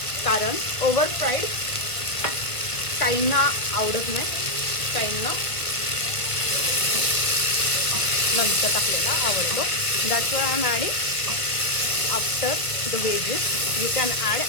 कारण ओव्हर फ्राईड काहींना आवडत नाही, काहींना नंतर टाकलेला आवडतो. That's why I'm adding after the wedges. You can add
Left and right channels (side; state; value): right; late; 1.4 ms